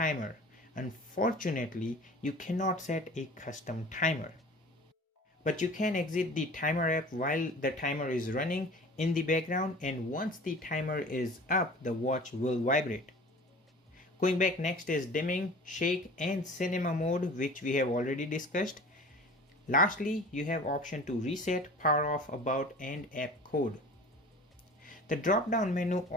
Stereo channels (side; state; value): both; normal; correlation 0.42